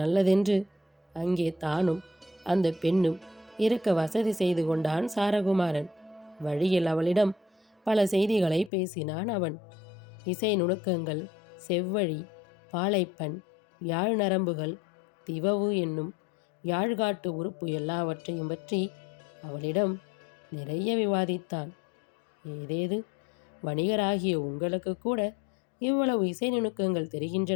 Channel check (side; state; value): right; drops out; at 8.7 s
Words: அங்கே தானும் அந்த பெண்ணும் இருக்க வசதி செய்து கொண்டான் சாரகுமாரன். வழியில் அவளிடம் பல செய்திகளை பேசினான் அவன். இசை நுணுக்கங்கள், செவ்வழி, பாலைப்பண், யாழ் நரம்புகள், திவவு என்னும் யாழ்காட்டு உறுப்பு எல்லாவற்றையும் பற்றி அவளிடம் நிறைய விவாதித்தான். ஏதேது, வணிகராகிய உங்களுக்கு கூட இவ்வளவு இசை நுணுக்கங்கள்